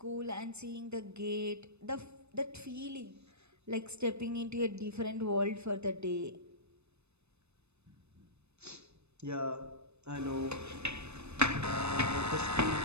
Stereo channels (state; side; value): late; left; 0.81 ms